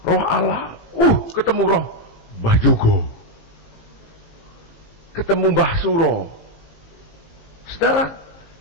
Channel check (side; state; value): right; late; 18 ms